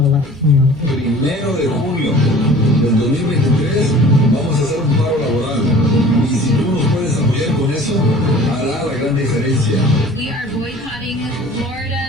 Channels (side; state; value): both; normal; correlation 0.46